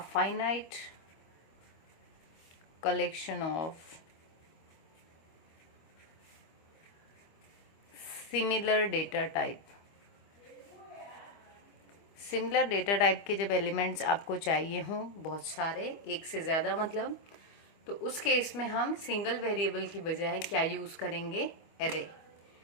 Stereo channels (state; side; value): late; right; 25 ms